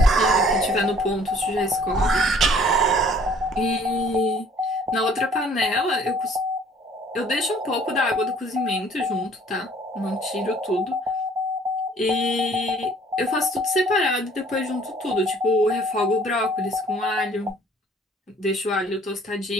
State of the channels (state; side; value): normal; both; correlation 0.56